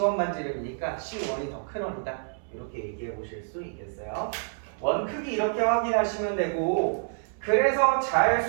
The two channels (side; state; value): left; silent; 59 dB below the other